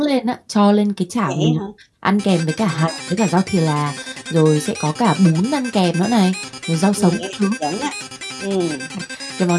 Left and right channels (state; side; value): identical; both; correlation 1.00